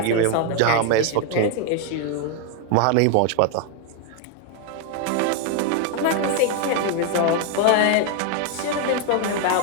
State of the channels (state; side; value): different; both; correlation 0.01